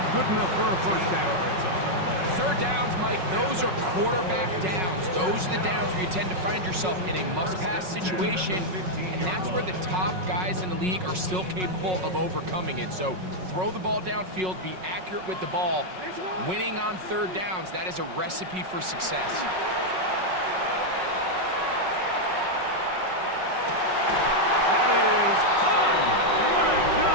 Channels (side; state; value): left; late; 5.4 ms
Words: good enough for a first down. Third downs, Mike, those are quarterback downs. Those are the downs where you tend to find yourself in a must-pass situation, and that's where the top guys in the league are still capable of overcoming it. So throw the ball downfield, be accurate with the ball. Winning on third downs, that is a recipe for success.